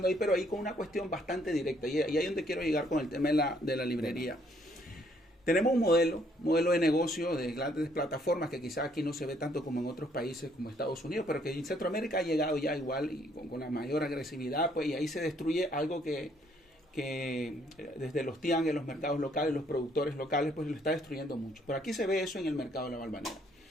ahí, pero ahí con una cuestión bastante directa. Y ahí es donde quiero llegar con el tema de la librería. Tenemos un modelo de negocio de grandes plataformas que quizás aquí no se ve tanto como en otros países como Estados Unidos, pero que en Centroamérica ha llegado ya igual y con la mayor agresividad, pues, y ahí se destruye algo que desde los tianguis, los mercados locales, los productores locales, pues lo está destruyendo mucho. Pero aquí se ve eso en el mercado de la Valvanera.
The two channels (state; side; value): normal; both; correlation 0.67